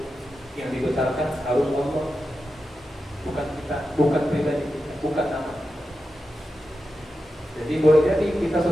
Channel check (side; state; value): both; normal; correlation 0.90